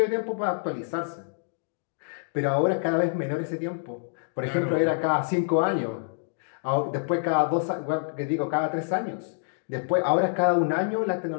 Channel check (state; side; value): silent; right; digital silence